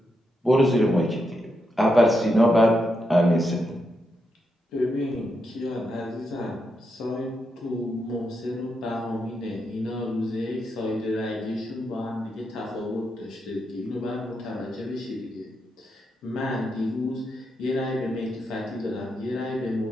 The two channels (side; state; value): both; normal; correlation 0.83